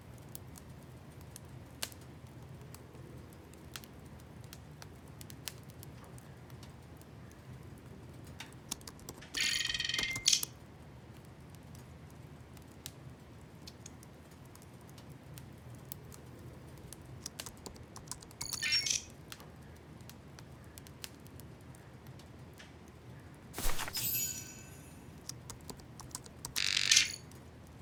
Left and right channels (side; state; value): both; identical; correlation 1.00